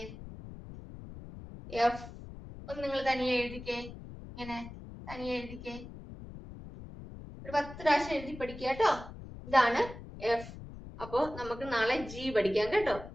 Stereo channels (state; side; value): noise; left; rumble, 13 dB below the sound